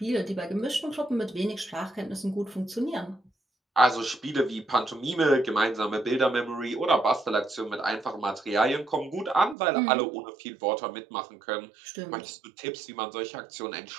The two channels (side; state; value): left; drops out; at 9.6 s